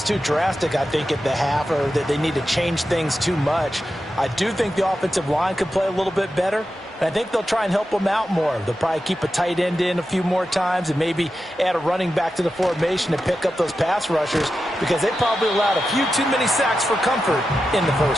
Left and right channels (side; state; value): both; normal; correlation 0.91